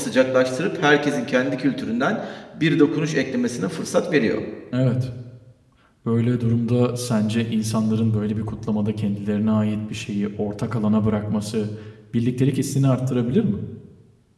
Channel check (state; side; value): identical; both; correlation 1.00